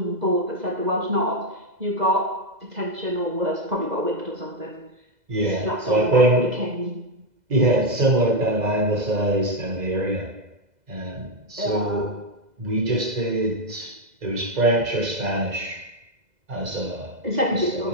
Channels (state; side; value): late; left; 2.0 ms